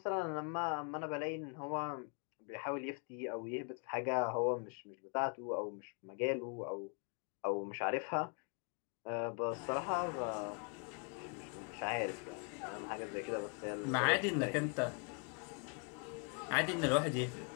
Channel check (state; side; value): quieter; right; 38.8 dB